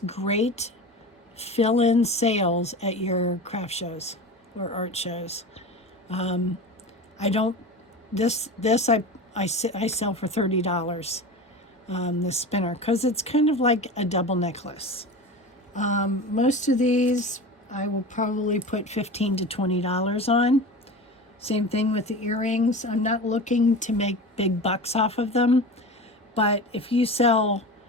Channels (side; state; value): both; normal; correlation 0.31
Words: great fill-in sales at your craft shows or art shows. I sell for $30, this spinner, because it's kind of like a double necklace. Most of these I will probably put $15 to $20 on. Same thing with the earrings. I'm not looking to make big bucks off of them, but if you sell,